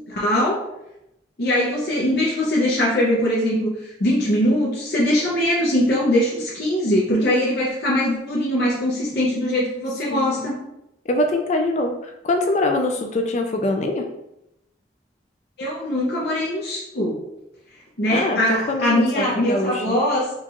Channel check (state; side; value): normal; both; correlation 0.46